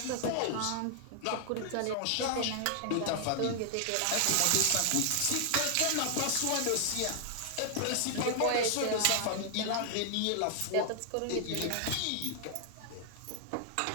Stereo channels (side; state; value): both; different; correlation 0.00